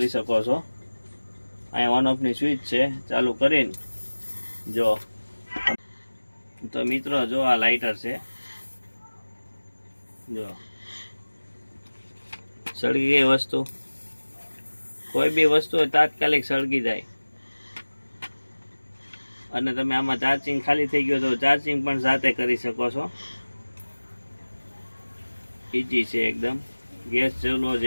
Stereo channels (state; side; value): inverted; both; correlation -1.00